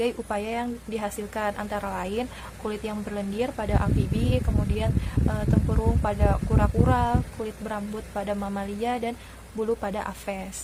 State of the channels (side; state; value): both; identical; correlation 1.00